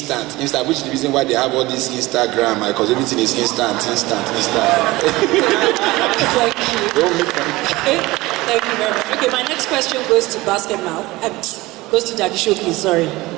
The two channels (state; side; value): quieter; left; 20.1 dB